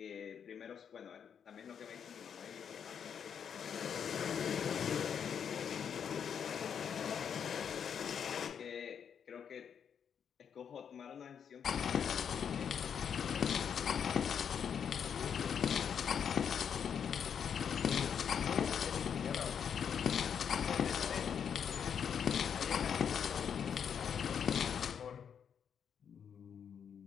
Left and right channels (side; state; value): right; quieter; 7.7 dB